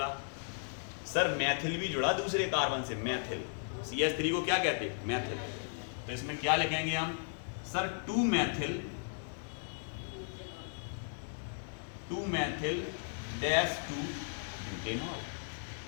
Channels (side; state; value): right; silent; digital silence